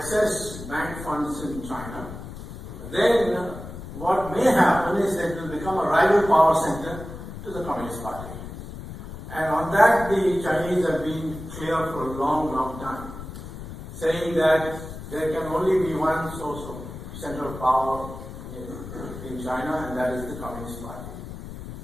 bank funds in China, then what may happen is that it will become a rival power center to the Communist Party. And on that, the Chinese have been clear for a long, long time, saying that there can only be one source of center of power in China, and that is the Communist Party.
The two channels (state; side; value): noise; left; rumble, 11 dB below the sound